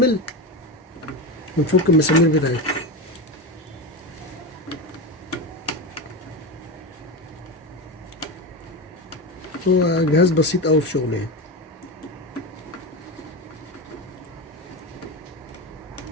ونفك المسامير بتاعتها. هو جهاز بسيط قوي في شغله يعني.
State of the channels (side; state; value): both; normal; correlation 0.19